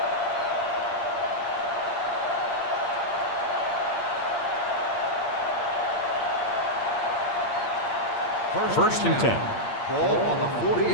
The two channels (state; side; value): late; right; 8.6 ms